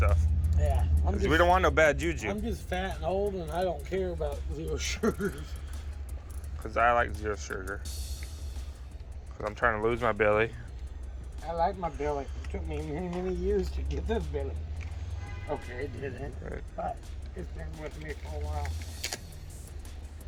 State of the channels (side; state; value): both; identical; correlation 1.00